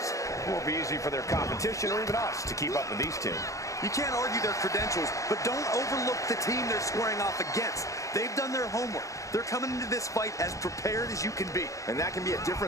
It won't be easy for their competition or even us to keep up with these two. You can't argue their credentials, but don't overlook the team they're squaring off against. They've done their homework. They're coming into this fight as prepared as you can be. And that can be a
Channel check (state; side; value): late; right; 0.16 ms